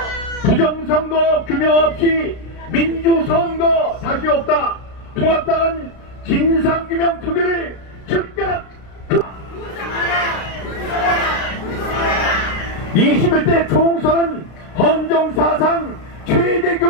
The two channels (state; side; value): late; right; 33 ms